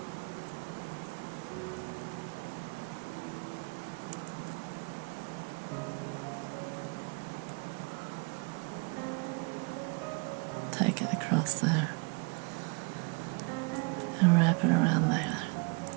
Take it across there and wrap it around there.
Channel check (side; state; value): left; quieter; 32.4 dB